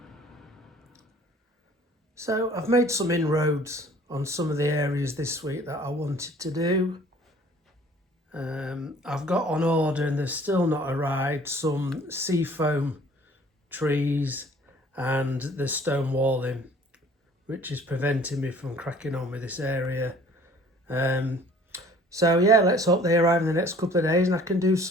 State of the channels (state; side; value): normal; both; correlation 0.53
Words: So I've made some inroads on some of the areas this week that I wanted to do. I've got on order, and they've still not arrived, some seafoam trees and the stone walling, which is preventing me from cracking on with this area. So yeah, let's hope they arrive in the next couple of days and I can do